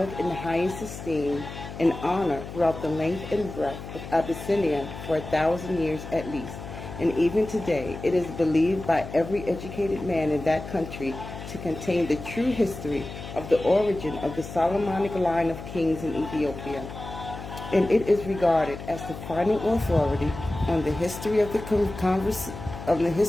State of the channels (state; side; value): noise; left; hum, 11 dB below the sound